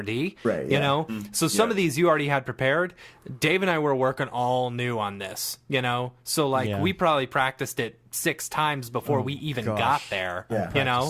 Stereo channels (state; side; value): identical; both; correlation 1.00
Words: Right, You yeah. know, so some of these you already had prepared. Dave and I were working all new on this. You know, so like Yeah. we probably practiced it 6 times before we even got gosh. there. Yeah. You know,